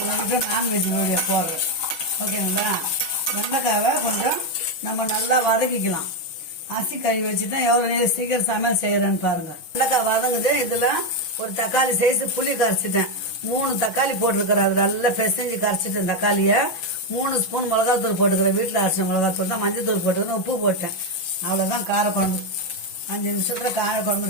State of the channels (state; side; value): late; right; 6.3 ms